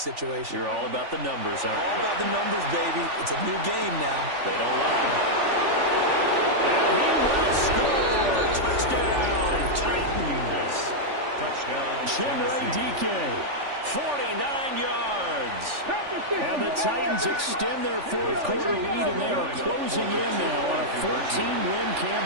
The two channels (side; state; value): left; late; 3.4 ms